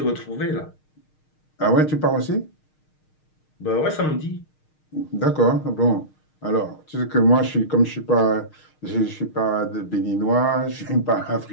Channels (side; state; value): right; late; 6.5 ms